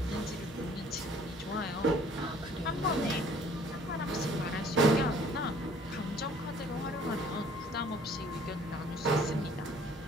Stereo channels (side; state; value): both; normal; correlation 0.56